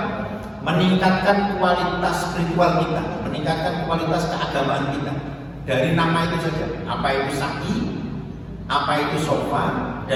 Meningkatkan kualitas spiritual kita, meningkatkan kualitas keagamaan kita. Dari nama itu saja, apa itu sa'i, apa itu safa,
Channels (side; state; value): both; identical; correlation 1.00